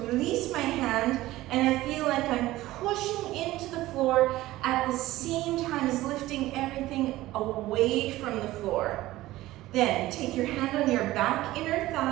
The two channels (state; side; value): quieter; left; 16.8 dB